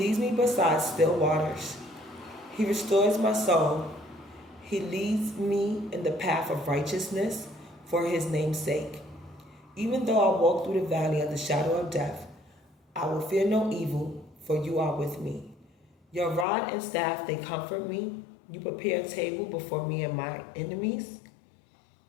me beside still waters. He restores my soul. He leads me in the path of righteousness for his name's sake. Even though I walk through the valley of the shadow of death, I will fear no evil, for you are with me. Your rod and staff, they comfort me. You prepare a table before me and my enemies.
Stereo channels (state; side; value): drops out; right; at 16.4 s